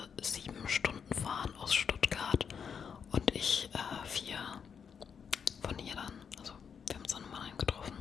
7 Stunden fahren aus Stuttgart und ich 4 von hier dann. Also wir haben uns dann in Mannheim getroffen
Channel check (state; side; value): quieter; right; 6.9 dB